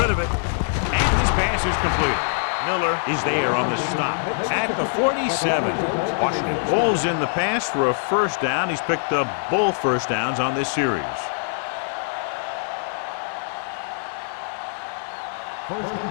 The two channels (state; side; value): silent; right; digital silence